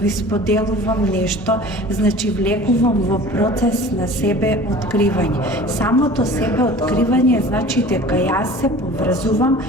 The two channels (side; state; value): both; normal; correlation 0.42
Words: споделувам нешто, значи влегувам во процес на себе откривање. Самото себе откривање значи дека јас се поврзувам